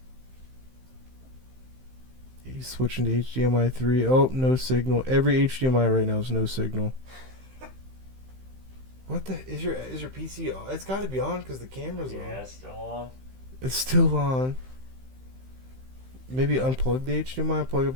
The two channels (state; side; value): late; left; 15 ms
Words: He's switching to HDMI 3. Oh, no signal. Every HDMI right now is no signal. What the is your PC on? It's got to be on because the camera's on. Yeah, it's still on. It's still on. Maybe unplug the HDMI, plug it